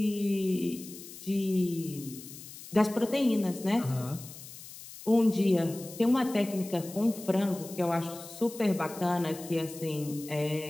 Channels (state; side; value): noise; left; hiss, 15 dB below the sound